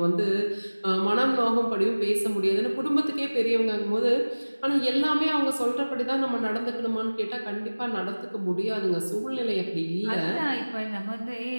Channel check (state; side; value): inverted; both; correlation -1.00